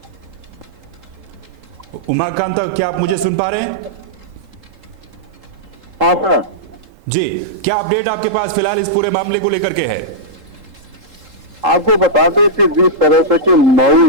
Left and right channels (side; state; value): left; late; 3.8 ms